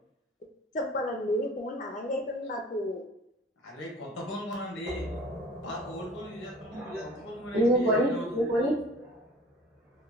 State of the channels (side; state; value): both; normal; correlation 0.46